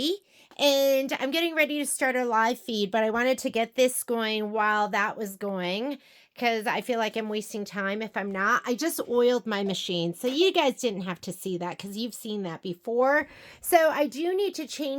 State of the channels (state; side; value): identical; both; correlation 1.00